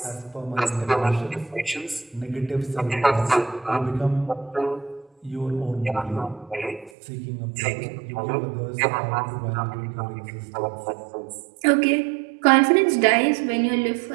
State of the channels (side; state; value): left; drops out; at 6.9 s